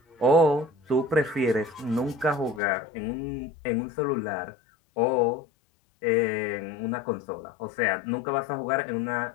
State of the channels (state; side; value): drops out; right; at 2.6 s